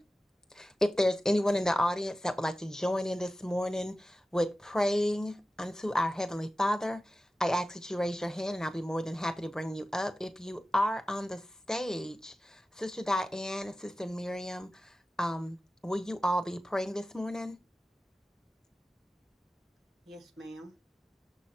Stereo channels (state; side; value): normal; both; correlation 0.94